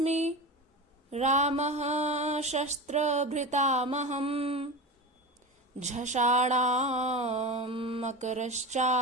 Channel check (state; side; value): normal; both; correlation 0.25